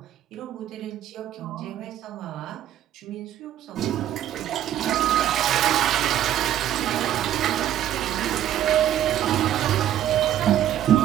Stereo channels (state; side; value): quieter; left; 11.6 dB